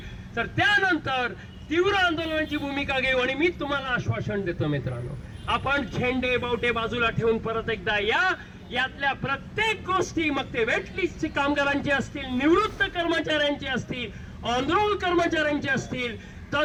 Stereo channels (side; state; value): both; identical; correlation 1.00